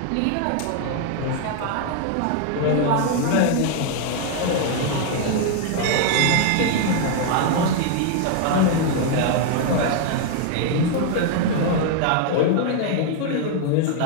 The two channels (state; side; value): different; both; correlation 0.00